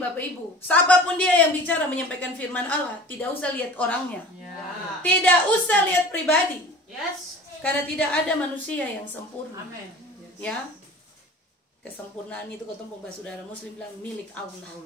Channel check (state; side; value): normal; both; correlation 0.40